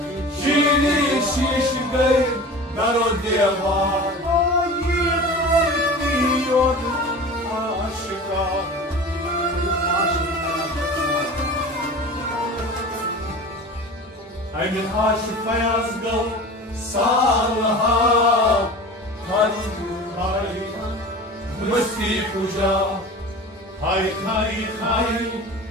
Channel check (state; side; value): normal; both; correlation 0.36